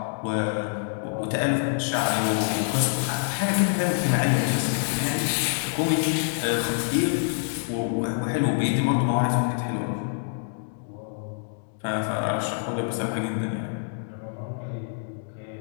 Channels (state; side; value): silent; right; digital silence